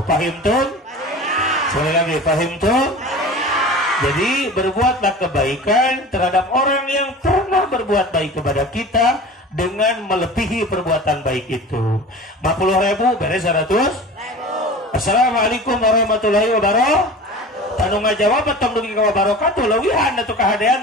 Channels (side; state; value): both; normal; correlation 0.37